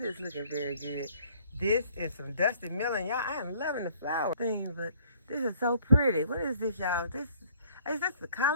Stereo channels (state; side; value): inverted; both; correlation -0.58